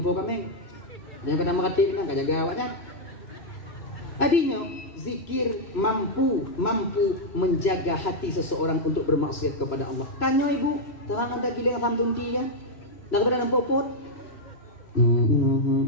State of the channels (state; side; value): late; right; 3.0 ms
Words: kami. Yang pertama kata ini kajaga awaknya. Tadinya zikir mampu menjaga hati seseorang untuk bermaksiat kepada Allah. Tanya ibu, terang ada giling ram tunti ya. Dah kepada nampak pot.